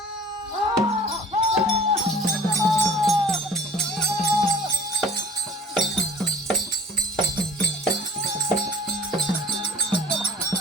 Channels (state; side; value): normal; both; correlation 0.48